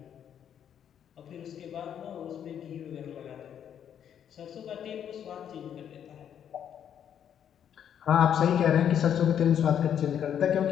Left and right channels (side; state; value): right; quieter; 9.1 dB